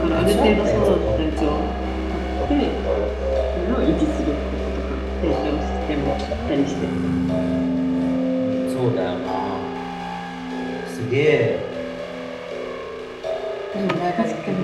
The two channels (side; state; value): both; identical; correlation 1.00